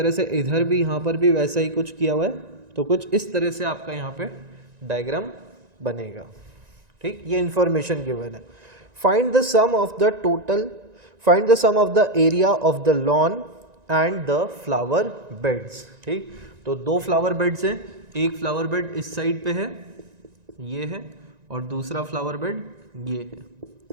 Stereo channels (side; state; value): left; late; 1.9 ms